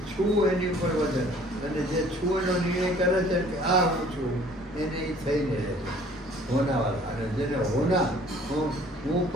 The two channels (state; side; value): normal; both; correlation 0.54